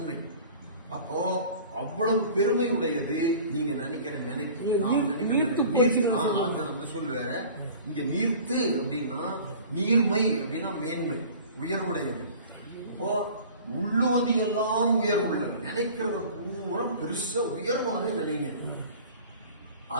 அப்போ அவ்வளவு பெருமை உடையது நீங்க நினைக்கிற நினைப்பு சொல் வேற. இங்க நீர்த்து அப்படின்னா நீர்மை அப்படின்னா மேன்மை, உயர்வுடையது. அப்போ உள்ளுவது எல்லாம் உயர்வுள்ள, நினைக்கிறத பூரா பெருசா உயர்வானே நினைங்க.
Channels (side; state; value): both; inverted; correlation -0.44